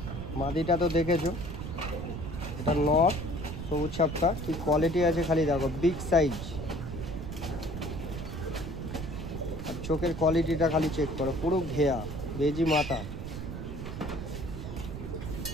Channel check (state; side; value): noise; right; rumble, 7 dB below the sound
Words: মাদিটা তো দেখেছো, এটা নর সবুজ ছাপটা, কি কোয়ালিটি আছে খালি দেখো, বিগ সাইজ। আর চোখের কোয়ালিটিটা খালি চেক করো, পুরো ঘেয়া বেজি মাথা।